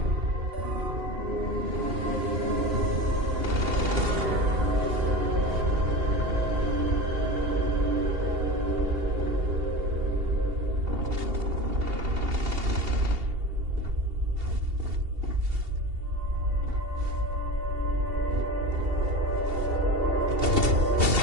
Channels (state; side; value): late; left; 2.7 ms